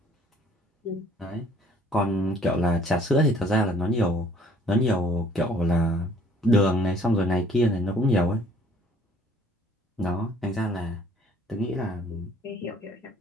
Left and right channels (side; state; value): both; normal; correlation 0.57